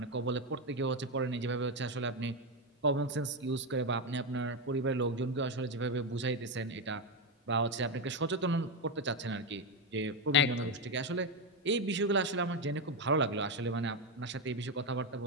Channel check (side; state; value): both; normal; correlation 0.08